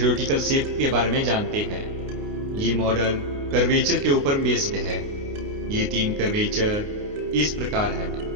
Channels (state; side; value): late; left; 29 ms